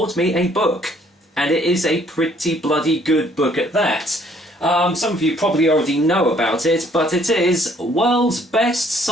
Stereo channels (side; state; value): both; normal; correlation 0.62